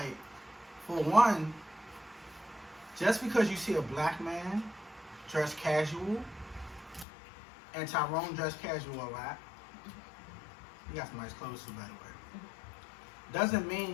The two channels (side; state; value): right; drops out; at 7.1 s